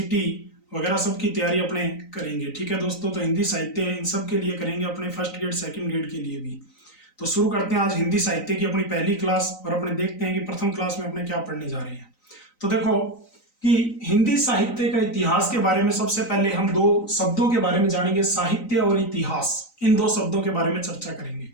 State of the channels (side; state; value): right; late; 3.9 ms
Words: वगैरह सब की तैयारी अपने करेंगे। ठीक है दोस्तों, तो हिंदी साहित्य इन सब के लिए करेंगे, अपने फर्स्ट ग्रेड सेकंड ग्रेड के लिए भी। तो शुरू करते हैं आज हिंदी साहित्य की अपनी पहली क्लास, और अपने देखते हैं कि प्रथम क्लास में अपने क्या पढ़ने जा रहे हैं। तो देखो कि हिंदी साहित्य का इतिहास के बारे में सबसे पहले हम दो शब्दों के बारे में जानेंगे, साहित्य और इतिहास। इन दो शब्दों के बारे में चर्चा करेंगे।